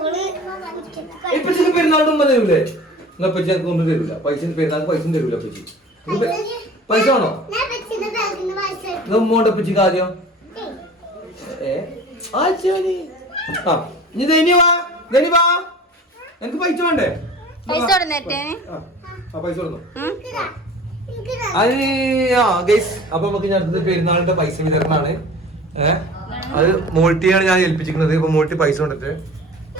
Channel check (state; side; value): normal; both; correlation 0.42